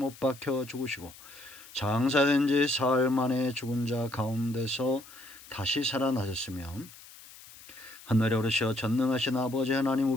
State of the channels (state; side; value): noise; left; hiss, 19 dB below the sound